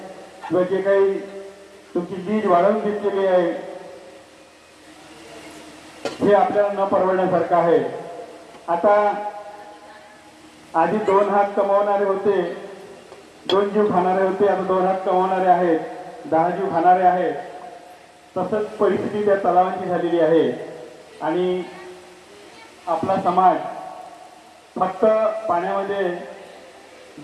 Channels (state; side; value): identical; both; correlation 1.00